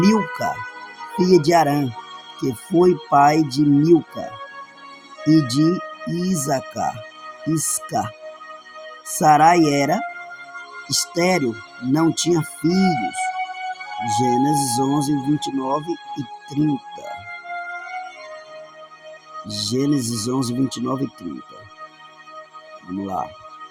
filha de Arã, que foi pai de Milca e de Isca. Sarai era estéril, não tinha filhos. Gênesis 11, 29 e 30. Gênesis 11, 29 e 30. Vamos lá.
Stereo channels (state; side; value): identical; both; correlation 1.00